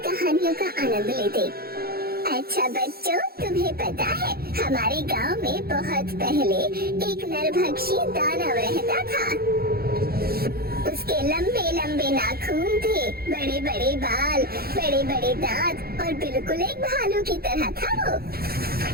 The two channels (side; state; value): left; late; 0.44 ms